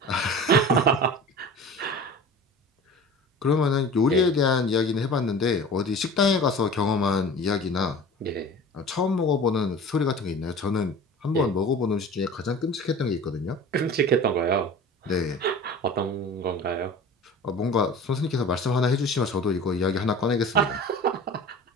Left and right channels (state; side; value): normal; both; correlation 0.39